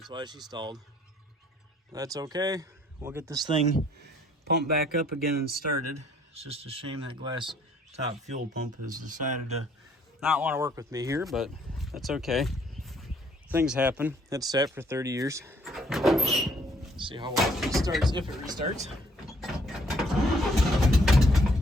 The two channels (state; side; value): normal; both; correlation 0.63